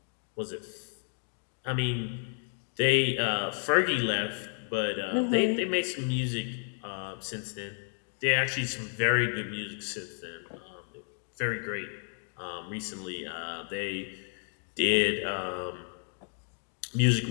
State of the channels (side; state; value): right; silent; 57 dB below the other